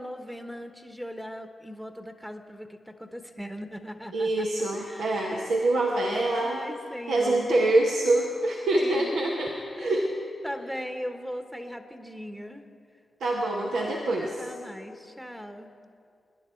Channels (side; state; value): both; normal; correlation 0.87